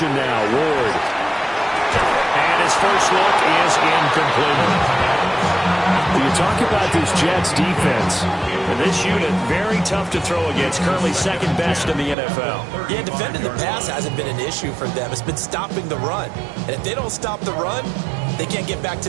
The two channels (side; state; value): left; drops out; at 12.2 s